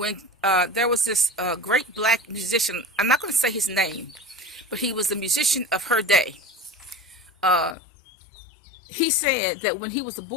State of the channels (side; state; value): right; drops out; at 7.8 s